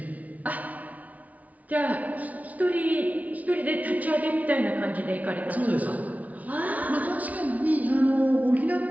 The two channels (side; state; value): left; late; 0.071 ms